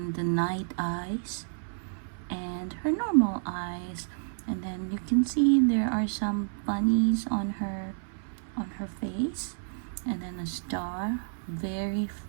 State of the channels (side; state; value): left; silent; 58 dB below the other